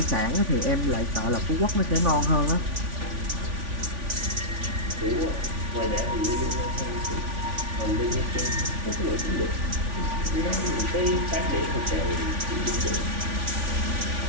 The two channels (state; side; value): late; left; 3.5 ms